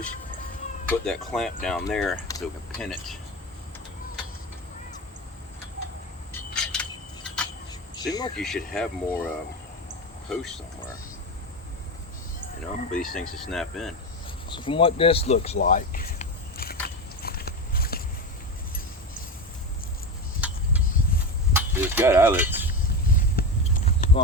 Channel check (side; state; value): both; normal; correlation 0.20